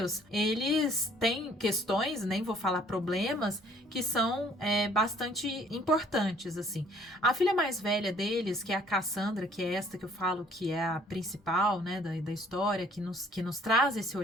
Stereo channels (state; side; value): normal; both; correlation 0.59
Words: eles têm questões, nem vou falar problemas, que são bastante importantes, assim. A filha mais velha deles, que é a Cassandra, que é esta que eu falo que é a principal, né, da história, que nos traz esse